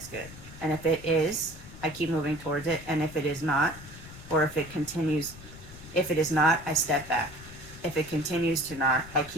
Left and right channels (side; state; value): left; noise; rumble, 16 dB below the sound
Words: good? And if it is, I keep moving towards it. And if it is not, or if it is not, I step back. If it continues to not, I